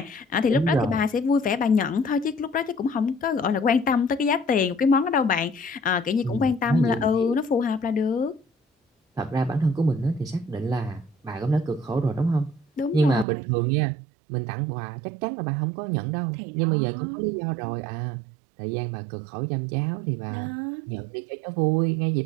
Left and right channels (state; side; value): drops out; left; at 13.2 s